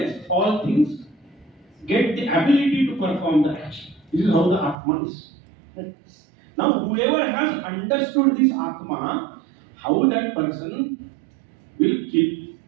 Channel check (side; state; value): left; drops out; at 4.8 s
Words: all things get the ability to perform the action. This is how the Atma is. Now, whoever has understood this Atma, how that person will kill.